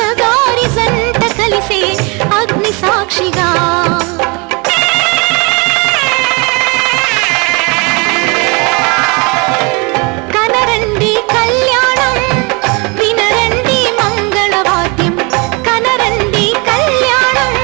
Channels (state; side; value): quieter; left; 29.8 dB